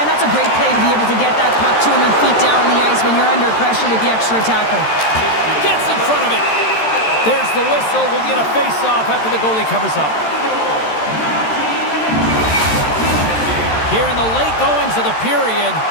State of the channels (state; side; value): late; right; 13 ms